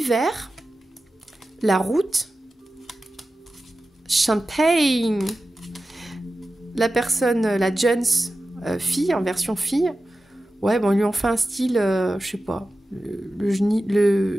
la route, champagne, la personne, la Jones fille, en version fille, ouais, bon, ils lui ont fait un style, je sais pas, le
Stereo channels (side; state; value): both; normal; correlation 0.94